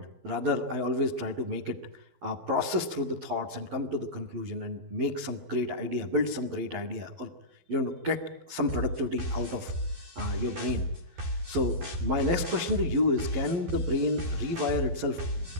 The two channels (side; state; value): left; late; 12 ms